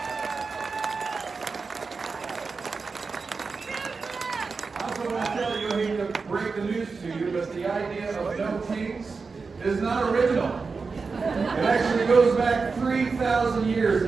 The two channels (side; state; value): left; quieter; 4.6 dB